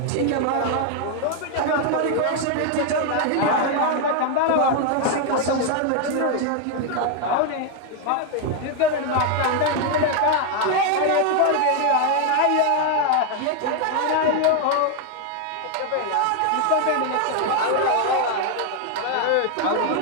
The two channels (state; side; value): different; both; correlation 0.01